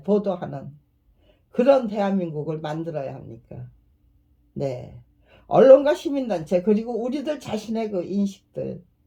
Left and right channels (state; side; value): identical; both; correlation 1.00